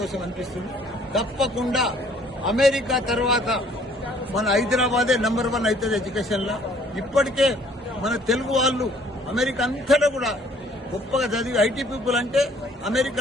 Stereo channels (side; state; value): both; normal; correlation 0.59